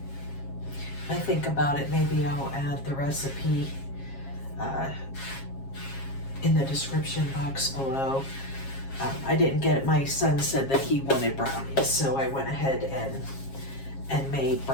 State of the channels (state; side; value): late; right; 7.4 ms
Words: think about it, maybe I'll add the recipe in the description box below. I didn't get it. My son said that he wanted brownies, so I went ahead and made